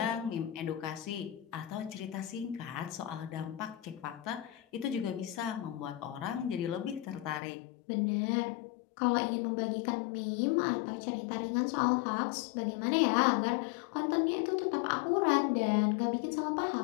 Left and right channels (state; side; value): drops out; right; at 7.4 s